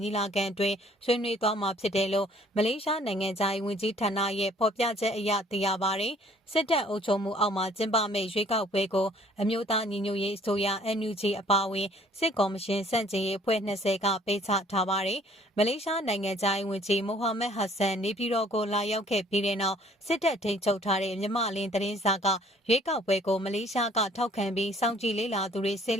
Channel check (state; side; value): normal; both; correlation 0.57